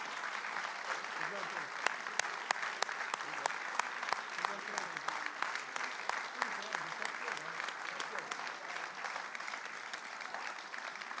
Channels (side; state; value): both; identical; correlation 1.00